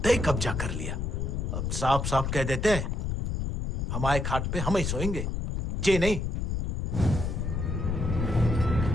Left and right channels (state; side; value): noise; left; rumble, 1 dB below the sound